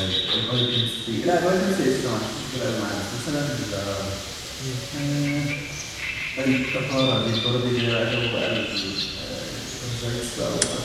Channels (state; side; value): identical; both; correlation 1.00